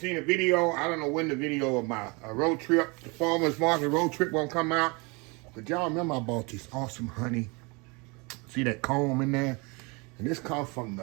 a video. I don't know when the video of my road trip, the farmer's market road trip won't come out. But y'all remember I bought this awesome honey. See that comb in there? And this comes from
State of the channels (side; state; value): left; quieter; 29.0 dB